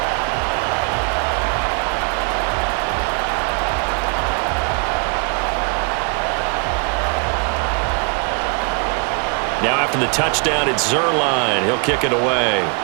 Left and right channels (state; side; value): quieter; left; 36.7 dB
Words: Now after the touchdown, it's Zerline. He'll kick it away.